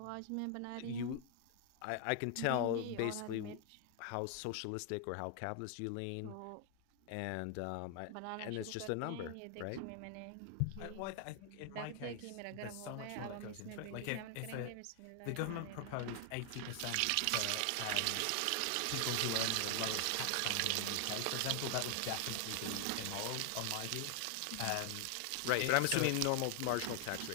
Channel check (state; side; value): different; both; correlation 0.00